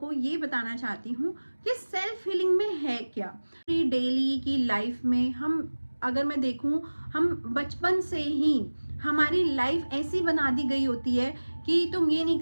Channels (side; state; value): both; inverted; correlation -1.00